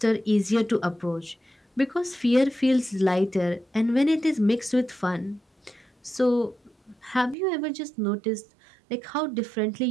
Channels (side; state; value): left; drops out; at 7.4 s